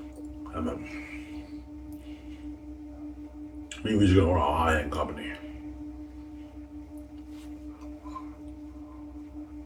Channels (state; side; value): identical; both; correlation 1.00